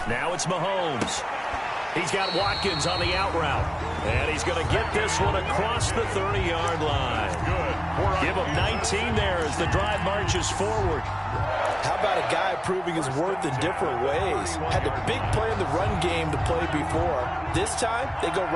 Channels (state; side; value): identical; both; correlation 1.00